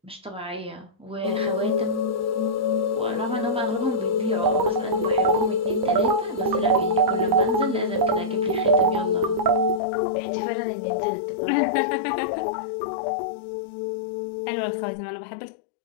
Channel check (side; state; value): right; drops out; at 9.8 s